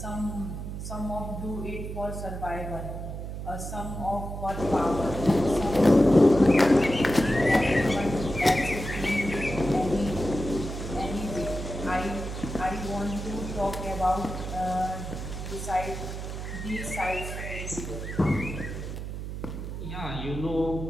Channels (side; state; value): right; noise; hum, 7 dB below the sound